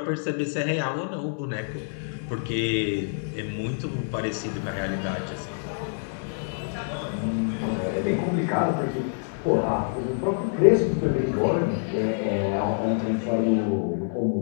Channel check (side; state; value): right; silent; digital silence